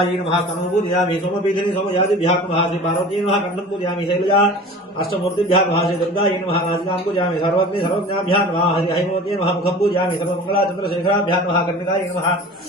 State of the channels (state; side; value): normal; both; correlation 0.40